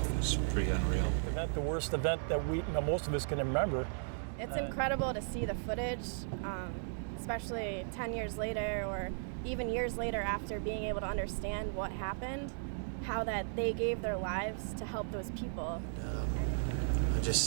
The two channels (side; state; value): left; silent; digital silence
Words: was pretty unreal. The worst event that most of us can remember. It's incredible to see the footage, especially 10 years later or even years later after being able to understand what happened, how that they gave their lives to help those people. I'm